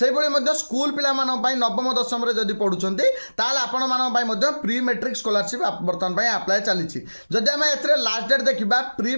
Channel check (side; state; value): both; inverted; correlation -1.00